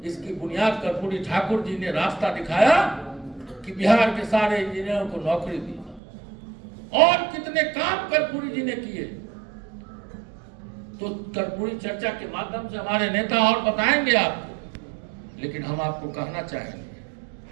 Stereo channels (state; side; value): drops out; left; at 6.0 s